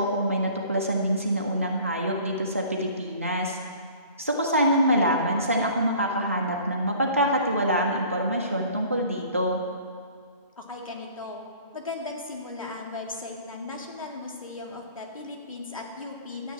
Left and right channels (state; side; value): inverted; both; correlation -0.48